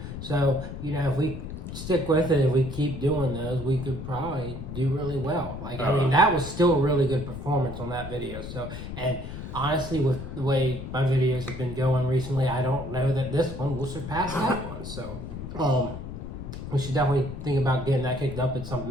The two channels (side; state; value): left; noise; rumble, 9 dB below the sound